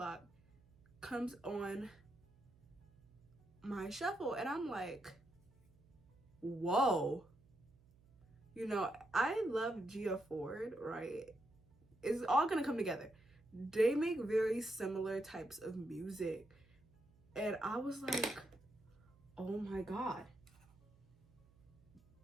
Comes on my shuffle, and I'm like, whoa. You know, I love Gia Ford, right? It's all gonna come together. They make very similar types of music, and I was like, oh my god,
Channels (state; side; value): noise; right; hum, 28 dB below the sound